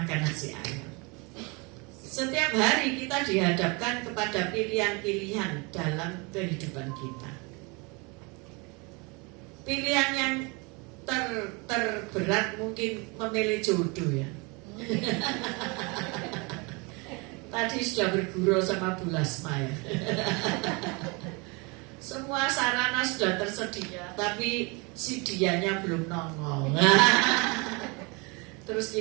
nasi ayam. Setiap hari kita dihadapkan kepada pilihan-pilihan dalam kehidupan kita. Pilihan yang terberat mungkin memilih jodoh ya. Tadi sudah bergurau sama Bu Lasma ya. Semua sarana sudah tersedia, tapi si dianya belum nongol. Terus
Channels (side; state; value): left; quieter; 29.0 dB